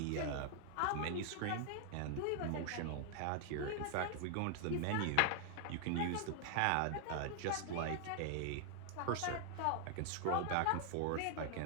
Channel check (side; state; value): both; different; correlation 0.00